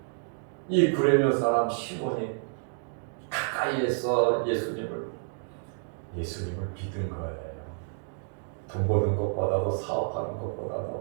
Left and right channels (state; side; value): silent; left; digital silence